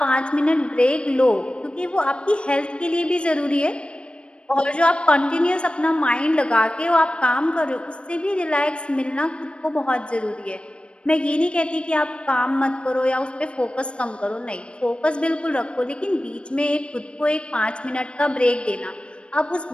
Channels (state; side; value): late; right; 0.057 ms